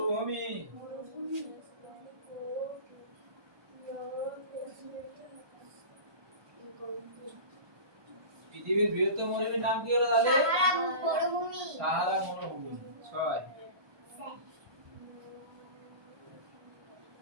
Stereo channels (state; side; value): late; left; 1.2 ms